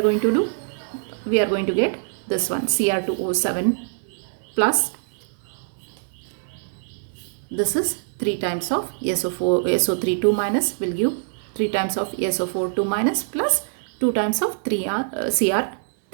going to do? We are going to get this one, Cr2O7 plus, this is 3 times of SO3 2 minus will give 3 times of SO4 2 minus plus 2 times of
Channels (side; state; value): left; silent; digital silence